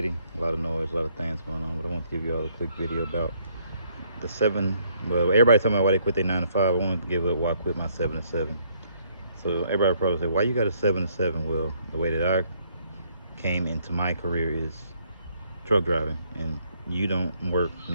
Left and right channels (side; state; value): both; inverted; correlation -0.68